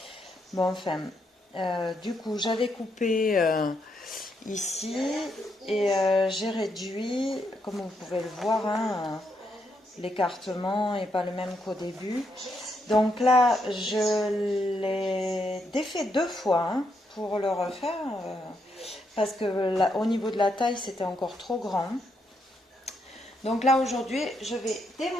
Bon, enfin, du coup, j'avais coupé ici et j'ai réduit, comme vous pouvez le voir, hein, l'écartement n'est pas le même qu'au début. Donc là, je l'ai défait 2 fois hein, pour le refaire parce que là, au niveau de la taille, c'était encore trop grand. Donc là, aujourd'hui, je vais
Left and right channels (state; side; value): normal; both; correlation 0.78